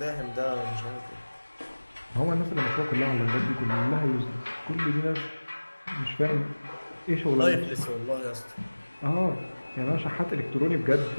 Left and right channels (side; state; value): both; inverted; correlation -1.00